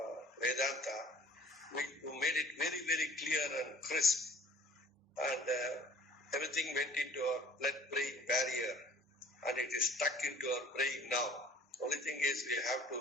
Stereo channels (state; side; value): normal; both; correlation 0.50